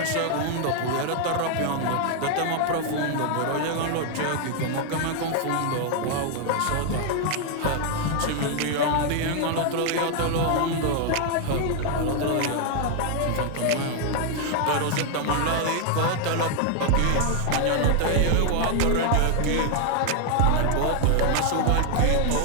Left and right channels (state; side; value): different; both; correlation 0.00